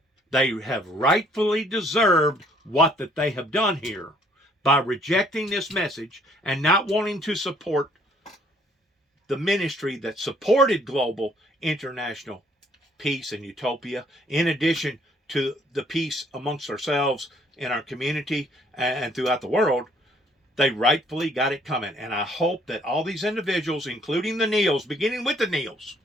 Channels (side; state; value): both; normal; correlation 0.63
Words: They have rightfully deserved what that they have done here by rejecting this message and not wanting to support the ministry that supported global international peace and utopia, in addition to the peace amongst ourselves in our community and throughout the world. They rightfully got it coming. And I hope that all these individuals, including the Neils, beginning with the Neils